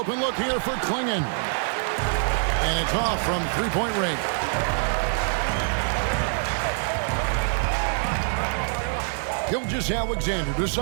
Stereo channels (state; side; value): silent; left; digital silence